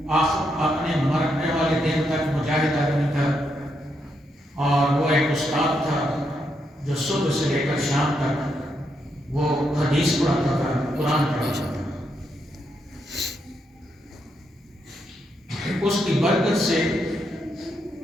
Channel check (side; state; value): both; normal; correlation 0.80